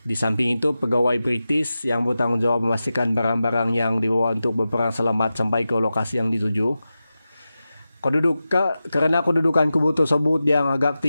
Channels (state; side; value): inverted; both; correlation -0.93